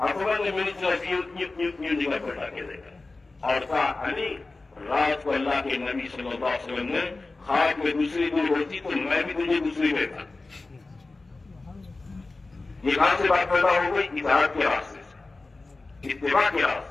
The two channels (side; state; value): right; quieter; 3.4 dB